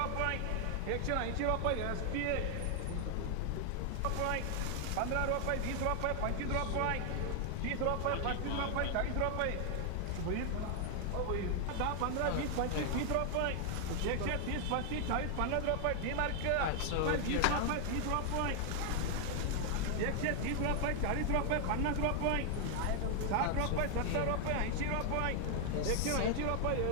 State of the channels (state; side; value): different; both; correlation 0.00